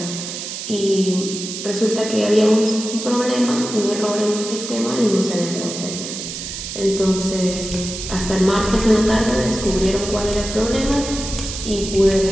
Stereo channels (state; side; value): noise; right; hiss, 7 dB below the sound